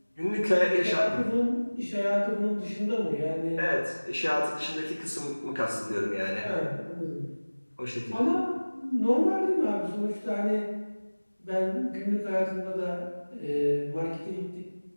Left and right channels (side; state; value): both; inverted; correlation -1.00